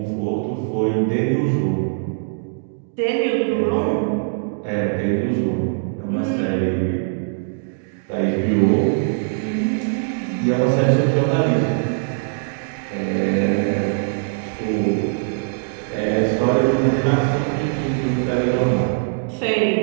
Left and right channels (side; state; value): left; silent; digital silence